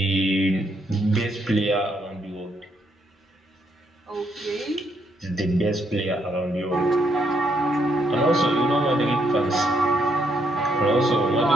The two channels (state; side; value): normal; both; correlation 0.75